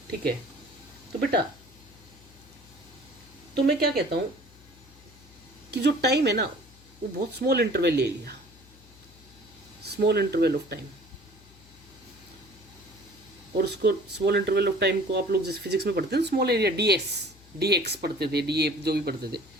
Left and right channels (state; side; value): noise; left; hum, 24 dB below the sound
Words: ठीक है। तो बेटा तो मैं क्या कहता हूँ कि जो टाइम है ना वो बहुत स्मॉल इंटरवल ले लिया, स्मॉल इंटरवल ऑफ टाइम। और उसको स्मॉल इंटरवल ऑफ टाइम को आप लोग जैसे फिजिक्स में पढ़ते हैं स्मॉल एरिया डी एक्स पढ़ते थे, डी ए जो भी पढ़ते थे,